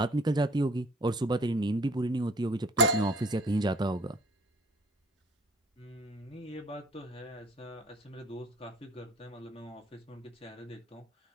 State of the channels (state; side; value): normal; both; correlation 0.53